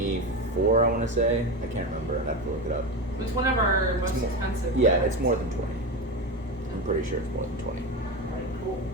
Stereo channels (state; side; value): normal; both; correlation 0.19